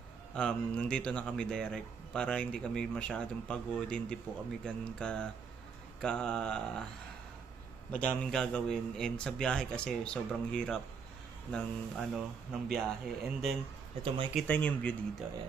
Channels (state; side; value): quieter; left; 5.9 dB